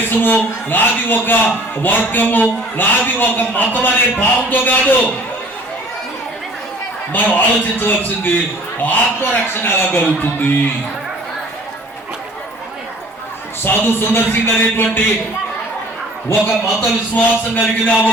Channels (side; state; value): both; normal; correlation 0.50